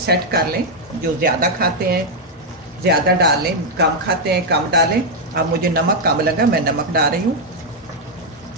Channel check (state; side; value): normal; both; correlation -0.01